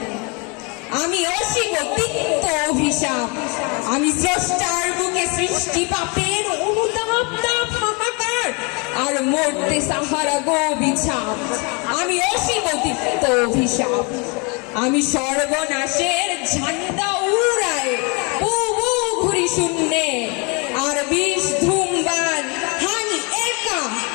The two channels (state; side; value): quieter; right; 31.3 dB